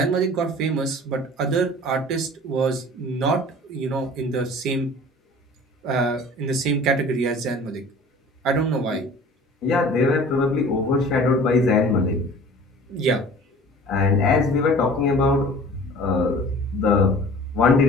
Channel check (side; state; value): both; normal; correlation 0.44